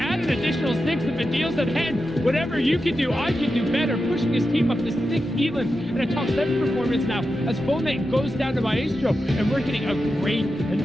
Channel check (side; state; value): left; noise; hum, 29 dB below the sound